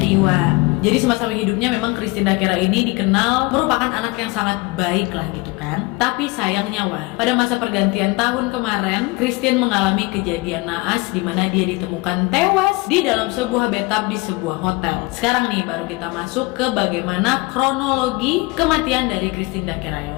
Jadi semasa hidupnya memang Christine Dakera ini dikenal merupakan anak yang sangat baik lah gitu kan. Tapi sayangnya pada masa pergantian tahun kemarin, Christine mengalami kejadian naas di mana dia ditemukan tewas di dalam sebuah bathtub di sebuah hotel. Sekarang nih baru kita masuk ke bagaimana kronologi kematian dari Christine Dakera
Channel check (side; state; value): right; quieter; 24.3 dB